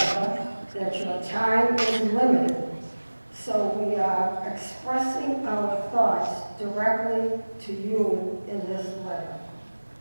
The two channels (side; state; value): both; inverted; correlation -1.00